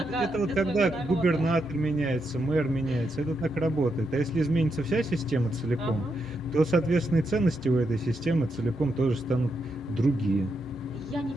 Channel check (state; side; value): normal; both; correlation 0.82